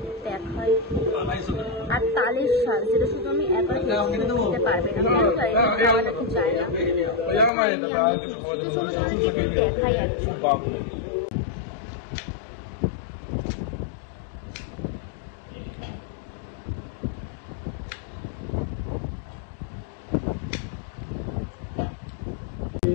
দেখাই। আর তালের শাক, যেটা শুধু আমি একা খেতে পারবে না, খাওয়া নাকি চায় না। চলো তোমাদেরকে দেখাই একজন।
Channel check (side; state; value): right; drops out; at 7.5 s